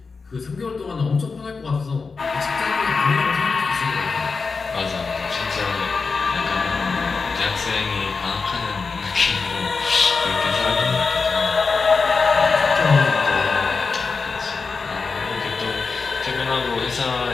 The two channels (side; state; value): right; quieter; 4.7 dB